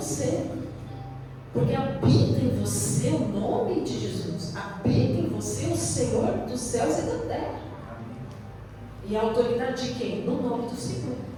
Porque habita em você o nome de Jesus. Habita em você o Senhor dos céus e da terra. E a autoridade de quem? No nome do Senhor.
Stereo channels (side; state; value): both; identical; correlation 1.00